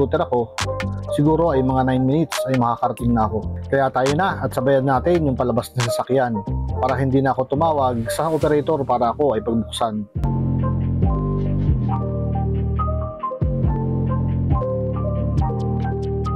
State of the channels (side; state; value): both; identical; correlation 1.00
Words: ako, siguro ay mga 9 minutes ay makakarating na ako. Kaya tayo na at sabayan natin yung palabas na sasakyan para hindi na ako tumawag sa operator para ako ay pagbuksan.